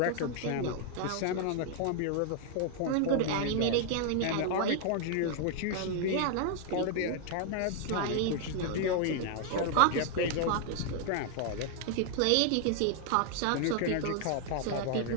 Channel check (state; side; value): different; both; correlation 0.00